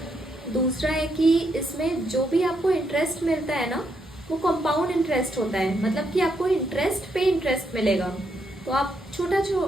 दूसरा है कि इसमें जो भी आपको इंटरेस्ट मिलता है ना, वो कंपाउंड इंटरेस्ट होता है, मतलब कि आपको इंटरेस्ट पे इंटरेस्ट मिलेगा। तो आप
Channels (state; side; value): normal; both; correlation 0.78